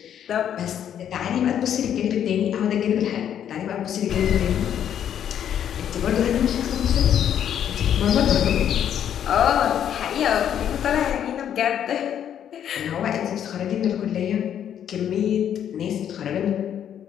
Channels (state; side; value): quieter; right; 9.6 dB